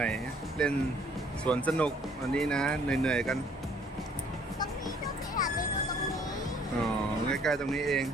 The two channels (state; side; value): normal; both; correlation 0.60